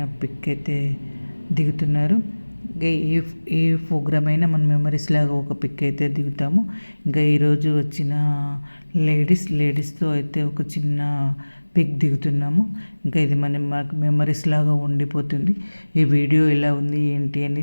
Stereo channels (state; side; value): inverted; both; correlation -1.00